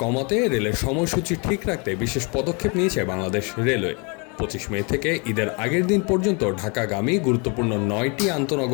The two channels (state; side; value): quieter; right; 32.7 dB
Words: কমাতে রেলের সময়সূচি ঠিক রাখতে বিশেষ পদক্ষেপ নিয়েছে বাংলাদেশ রেলওয়ে। 25 মে থেকে ঈদের আগের দিন পর্যন্ত ঢাকাগামী গুরুত্বপূর্ণ 9টি